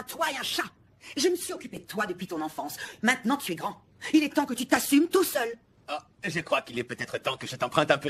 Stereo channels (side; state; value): both; identical; correlation 1.00